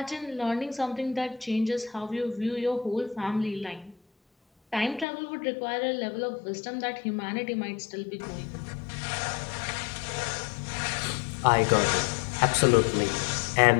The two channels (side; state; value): right; drops out; at 5.1 s